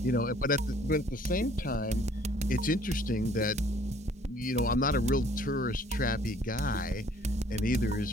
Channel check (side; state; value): both; normal; correlation 0.58